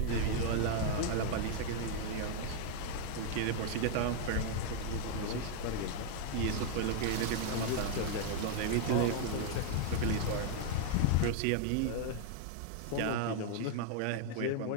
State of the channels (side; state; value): both; different; correlation 0.00